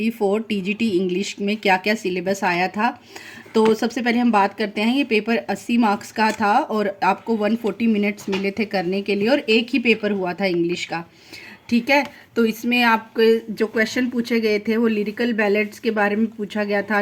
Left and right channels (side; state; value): both; identical; correlation 1.00